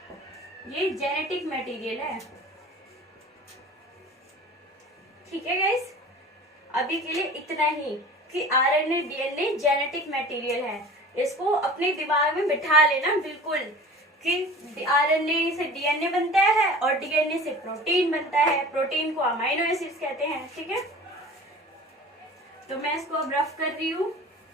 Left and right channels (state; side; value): normal; both; correlation 0.40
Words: ये जेनेटिक मटेरियल है, ठीक है गाइस। अभी के लिए इतना ही कि RNA, DNA जेनेटिक मटेरियल है। इसको अपने दिमाग में बिठा लेना बिल्कुल कि RNA से DNA बनता है और DNA से प्रोटीन बनता है, प्रोटीन को अमाइनो एसिड्स कहते हैं, ठीक है। तो मैं इसको अब रफ कर रही हूँ,